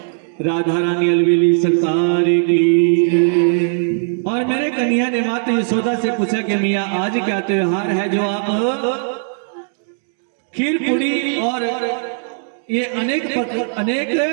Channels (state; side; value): silent; left; digital silence